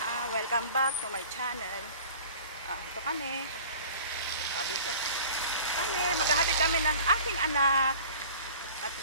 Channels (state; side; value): inverted; both; correlation -0.44